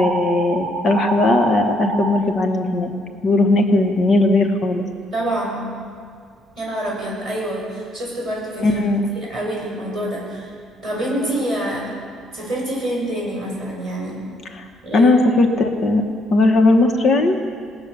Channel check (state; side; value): normal; both; correlation 0.72